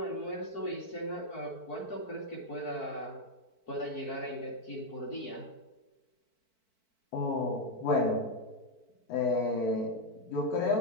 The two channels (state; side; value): late; right; 4.5 ms